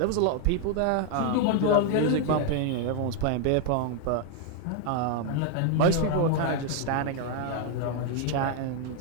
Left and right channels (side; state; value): both; different; correlation 0.01